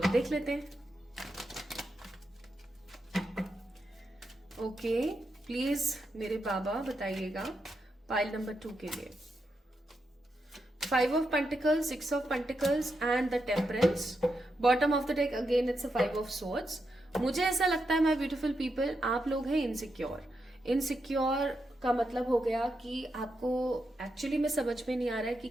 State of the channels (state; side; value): normal; both; correlation 0.85